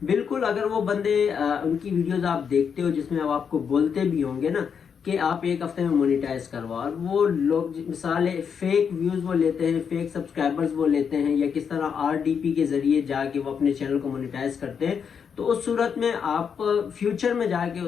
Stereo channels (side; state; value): right; quieter; 6.9 dB